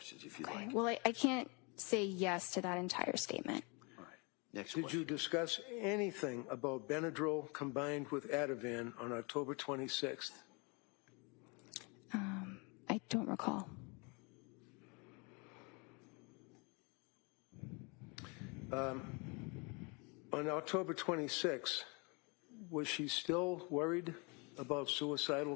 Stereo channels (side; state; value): right; quieter; 30.9 dB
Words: if you'd like. Well, I can't say yes to that entire statement. All right. Next Did question. you discuss anything about Benadryl combined with Ativan on October 26th? I don't recall. On October 26th, was she still worried about suicidal